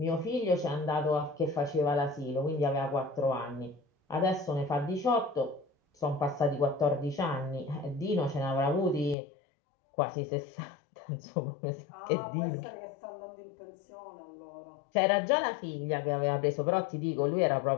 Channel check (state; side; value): drops out; right; at 9.2 s